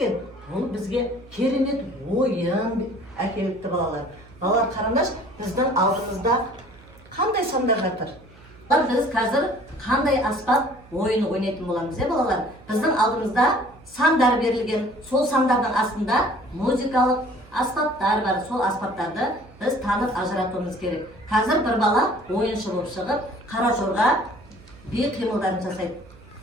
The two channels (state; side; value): noise; right; hum, 24 dB below the sound